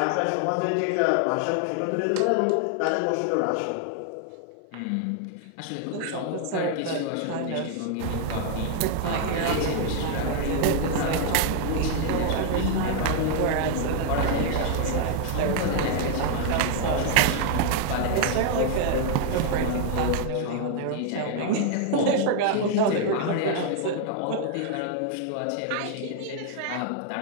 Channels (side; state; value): both; different; correlation 0.00